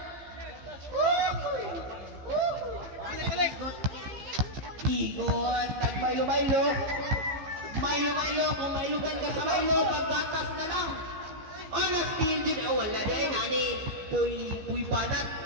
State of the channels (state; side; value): late; left; 15 ms